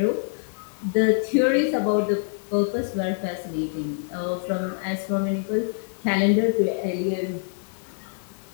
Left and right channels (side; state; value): right; silent; 62 dB below the other